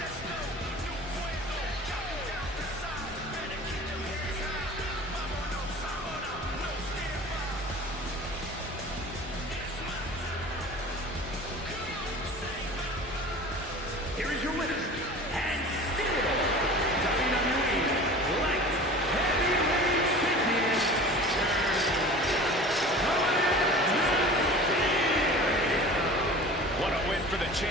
Here is your winner, and still WWE Light Heavyweight Champion. What a win for the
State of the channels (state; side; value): normal; both; correlation 0.40